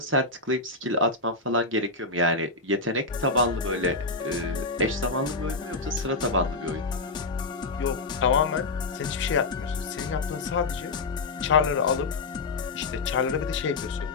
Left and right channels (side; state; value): right; quieter; 3.4 dB